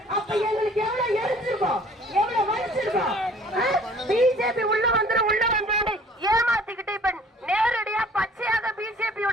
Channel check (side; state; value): both; normal; correlation 0.53